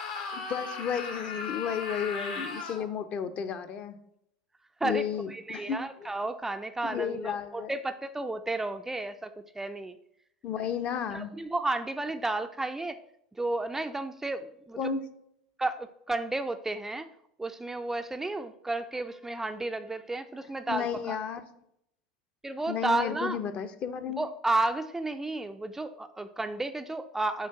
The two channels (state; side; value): normal; both; correlation 0.68